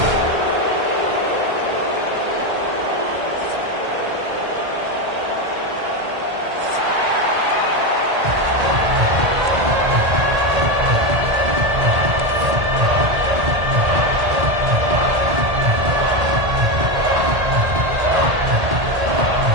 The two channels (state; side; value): late; left; 1.8 ms